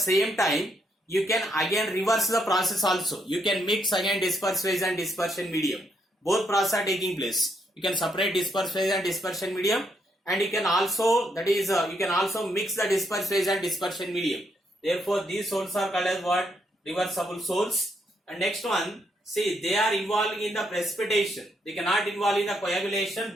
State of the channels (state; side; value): normal; both; correlation 0.76